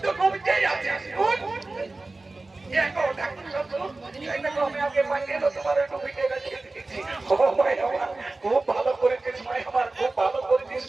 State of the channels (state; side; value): quieter; left; 3.2 dB